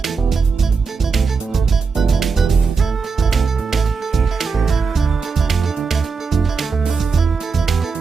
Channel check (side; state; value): left; quieter; 5.0 dB